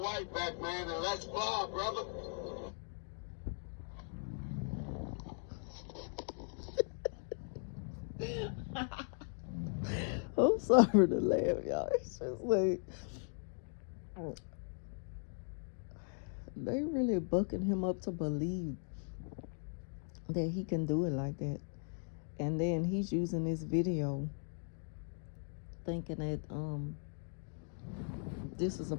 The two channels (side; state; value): right; silent; 52 dB below the other